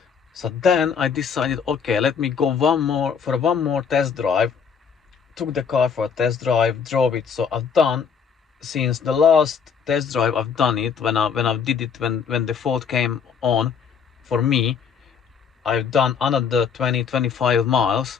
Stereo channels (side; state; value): right; quieter; 6.6 dB